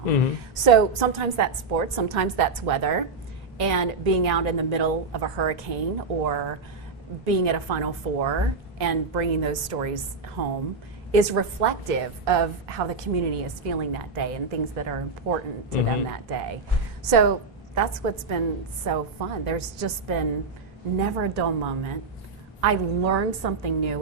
So sometimes that's sports, sometimes that's weather. And being out in the middle of a hurricane, or being at a Final Four and bringing those stories home is reflective of how the community is feeling that day and things that are important to them that day. So that's what's been so fun. There's just been never a dull moment. I learned something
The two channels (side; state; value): left; quieter; 4.0 dB